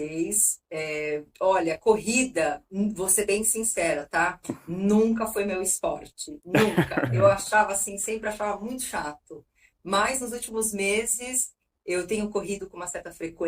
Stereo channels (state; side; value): identical; both; correlation 1.00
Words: Olha, corrida, vou ser bem sincera, tá? Nunca foi meu esporte, nunca. Eu achava assim, sempre achava muito chato. Mas nos últimos meses eu tenho corrido com uma certa